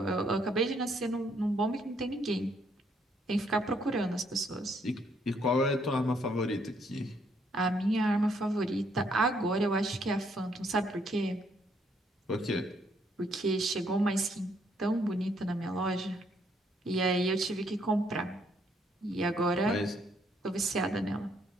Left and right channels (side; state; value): both; normal; correlation 0.70